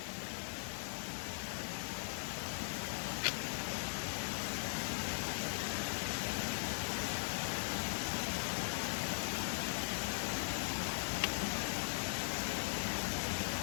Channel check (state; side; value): silent; right; 51 dB below the other